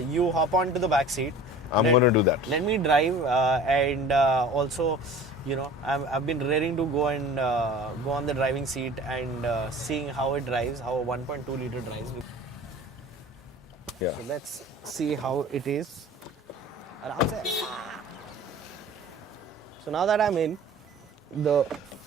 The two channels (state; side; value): normal; both; correlation 0.42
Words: you hop onto the back seat? I'm going to do that. Let me drive, and also, I've been raring to go and go on the driving seat and seeing how it drives, how a 1.2 liter drives. Yeah. So let's see how it is. So now that I'm in the